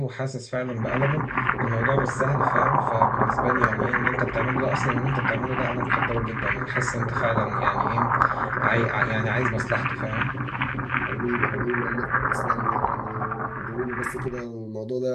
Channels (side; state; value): both; identical; correlation 1.00